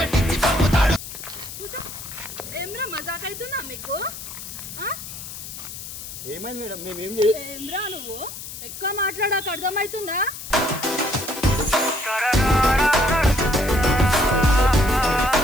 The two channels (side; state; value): left; noise; hiss, 11 dB below the sound